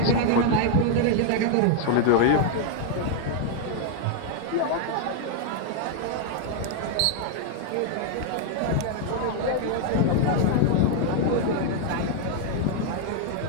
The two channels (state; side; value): different; both; correlation 0.00